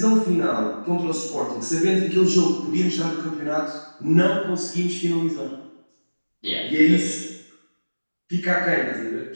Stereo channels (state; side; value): inverted; both; correlation -1.00